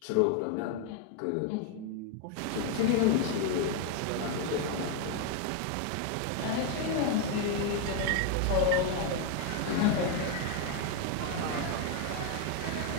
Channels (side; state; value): both; different; correlation 0.01